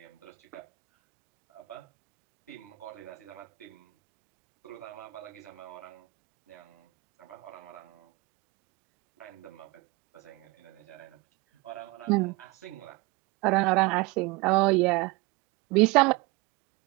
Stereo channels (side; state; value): left; quieter; 24.3 dB